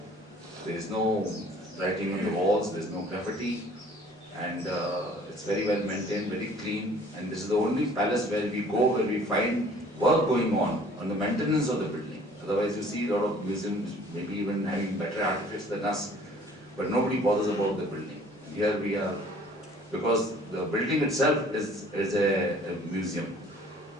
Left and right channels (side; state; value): both; normal; correlation 0.53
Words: There is no writing on the walls, there is no graffiti, and it's very well maintained, very clean. And this is the only palace where we go, where we find work going on the maintenance of the building. Otherwise, you see a lot of museums, maybe even having better artifacts than us, but nobody bothers about the building. Here we are, because the building itself is a museum,